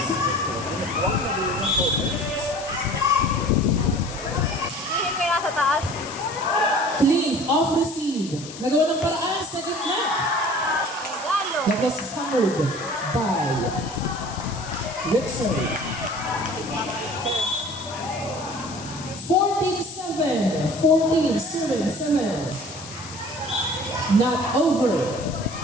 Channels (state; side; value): noise; left; hiss, 14 dB below the sound